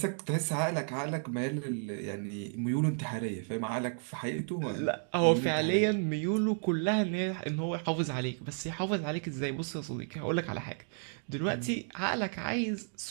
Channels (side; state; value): left; silent; 56 dB below the other